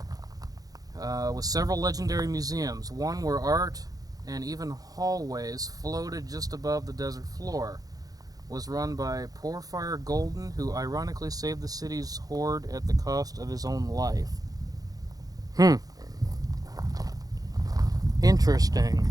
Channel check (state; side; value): late; left; 0.18 ms